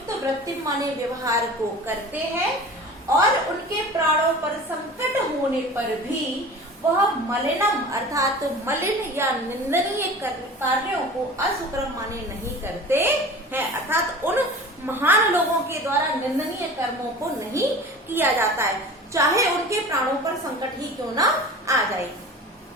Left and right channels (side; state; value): both; normal; correlation 0.38